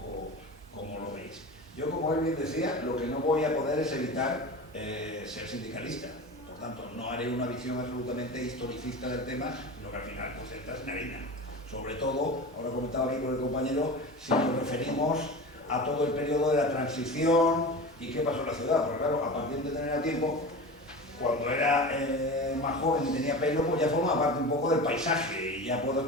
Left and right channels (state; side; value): normal; both; correlation 0.31